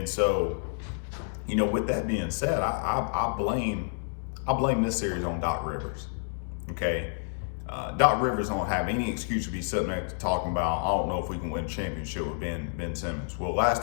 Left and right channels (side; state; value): right; silent; digital silence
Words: so, with that being said, I blame this series on Doc Rivers. Okay, Doc Rivers don't have any excuse to be sitting there talking about, I don't know if we can win a championship with Ben Simmons. Well, last